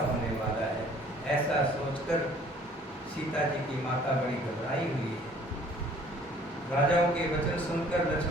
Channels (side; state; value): both; normal; correlation 0.55